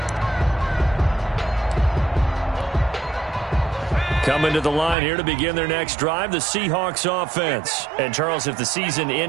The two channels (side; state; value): left; drops out; at 5.0 s